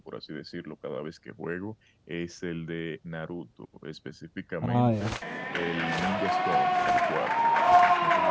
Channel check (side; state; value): both; identical; correlation 1.00